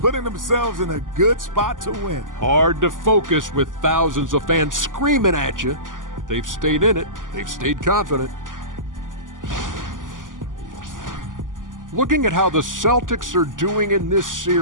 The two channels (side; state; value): left; late; 0.88 ms